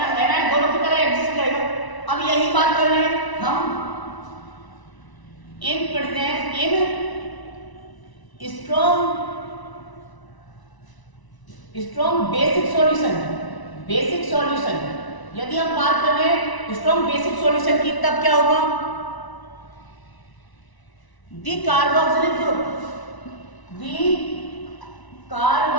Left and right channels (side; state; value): right; late; 1.0 ms